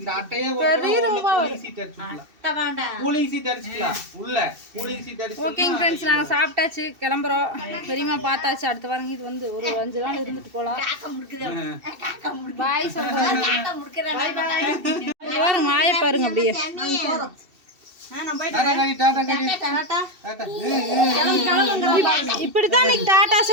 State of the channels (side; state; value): left; late; 2.7 ms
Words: அட்டையே பெரிய ரூபா சீட் அடிச்சுக்கலாம். கூலிங் சீட் அடிச்சுக்கலாம். உள்ள கூலிங் சீட் அடிச்சு. ஓகேங்க ஃப்ரெண்ட்ஸ் நாங்க சாப்பிட்டாச்சு கிளம்புறோம். பெரியம்மா பார்த்தாச்சு. அடுத்த வாரம் இது வந்து ஒரு 5 நாள் இருந்துட்டு போலாம். பாய் சொல்றேன். பாருங்க மாய பாருங்க அப்படியே. இப்படித்தான் இன்னைக்கு டாட்டா